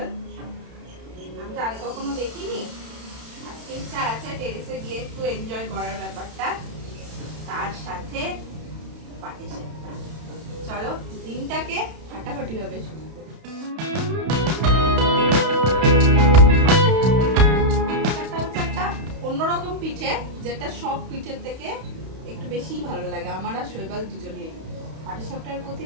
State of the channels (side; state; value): left; late; 31 ms